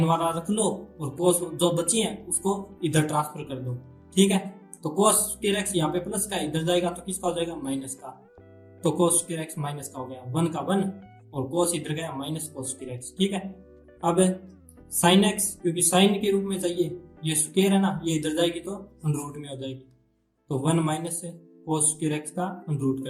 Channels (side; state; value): both; identical; correlation 1.00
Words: वाला रख लो और कोस जो बची है उसको इधर ट्रांसफर कर दो। ठीक है, तो कोस स्क्वायर एक्स यहाँ पे प्लस का इधर जाएगा तो किसका हो जाएगा माइनस का, तो कोस स्क्वायर एक्स माइनस का हो गया, 1 का 1 और कोस इधर गया माइनस कोस स्क्वायर एक्स। ठीक है, अब साइन एक्स क्योंकि साइन के रूप में चाहिए, ये स्क्वायर है ना, ये इधर जाएगी तो अंडर रूट में हो जाएगी, तो 1 माइनस कोस स्क्वायर एक्स का अंडर रूट